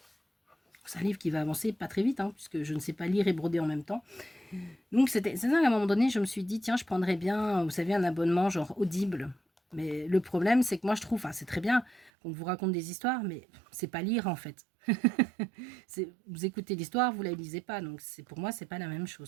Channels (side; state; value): left; drops out; at 12.1 s